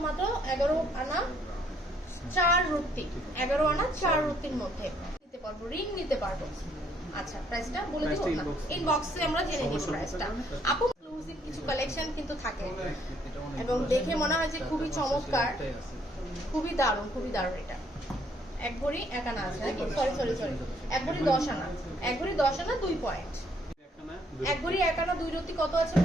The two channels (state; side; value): normal; both; correlation 0.67